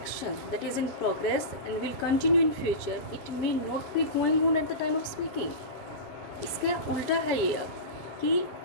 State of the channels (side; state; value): right; late; 7.3 ms